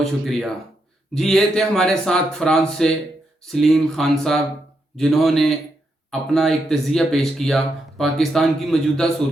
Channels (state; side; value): normal; both; correlation 0.82